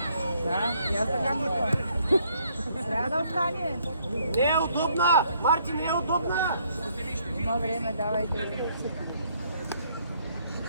Да, я така мисля. Трябва да остане. Не е удобна! Марти, не е удобна! Има време, давайте.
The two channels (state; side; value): inverted; both; correlation -0.67